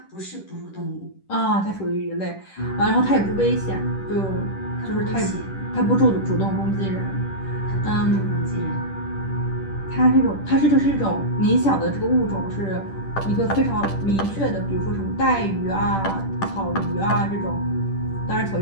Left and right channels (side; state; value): right; late; 10 ms